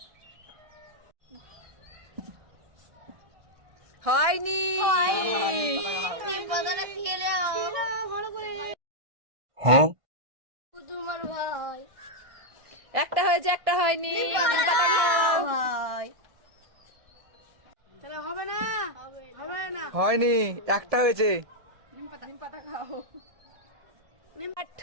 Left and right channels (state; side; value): late; left; 1.6 ms